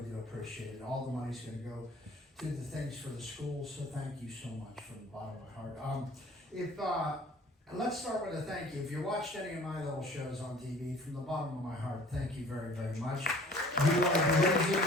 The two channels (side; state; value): both; normal; correlation 0.50